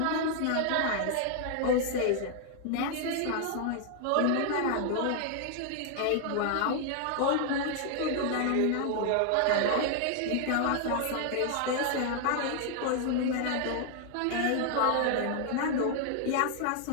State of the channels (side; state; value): both; different; correlation 0.00